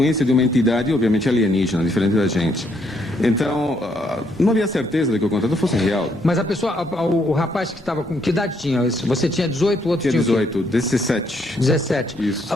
de uma entidade, obviamente alienígena, diferente da gente. Então, não havia certeza de que o contato fosse real. Mas a pessoa, o rapaz que estava com... Que idade tinha? Você tinha 18, o outro Tinha tinha o quê? 18, 17. 17.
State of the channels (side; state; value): both; normal; correlation 0.72